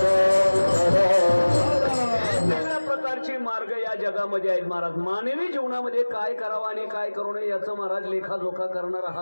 वेगवेगळ्या प्रकारचे मार्ग या जगामध्ये आहेत महाराज. मानवी जीवनामध्ये काय करावं आणि काय करू नये याचं महाराज लेखाजोखा करणारा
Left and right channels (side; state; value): both; inverted; correlation -1.00